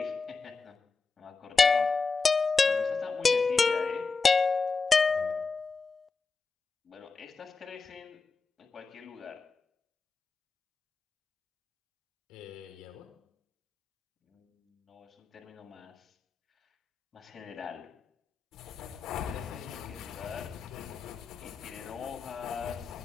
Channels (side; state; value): right; quieter; 4.3 dB